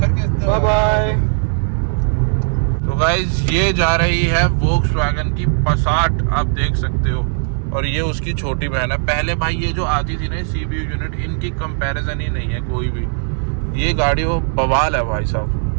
के बाय बाय। तो गाइस ये जा रही है वोक्सवैगन की पासाट, आप देख सकते हो, और ये उसकी छोटी बहन है। पहले भाई ये जो आती थी ना CBU यूनिट, इनकी कंपैरिजन ही नहीं है कोई भी। ये गाड़ी वो बवाल है भाई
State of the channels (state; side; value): silent; left; digital silence